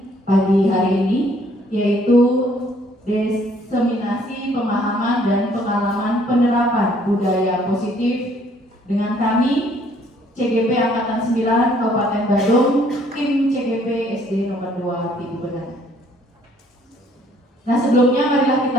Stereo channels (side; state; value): both; normal; correlation 0.62